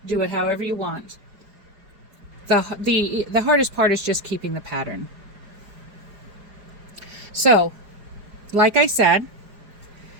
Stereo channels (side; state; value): left; late; 4.9 ms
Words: Do it however you want. The hardest part is just keeping the pattern. So, like I said,